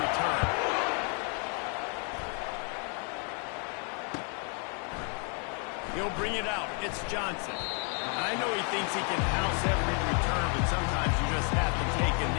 return. He'll bring it out. It's Johnson. I know he thinks he can house every return, but sometimes you just have to take a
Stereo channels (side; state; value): right; quieter; 39.3 dB